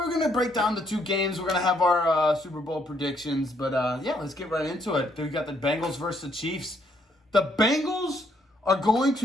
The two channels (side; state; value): both; normal; correlation 0.70